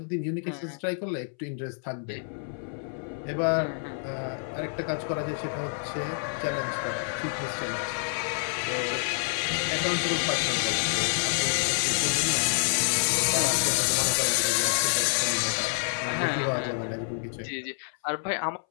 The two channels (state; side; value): silent; right; 59 dB below the other